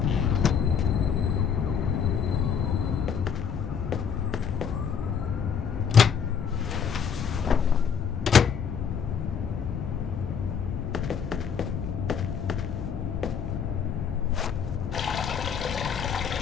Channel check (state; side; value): quieter; right; 7.1 dB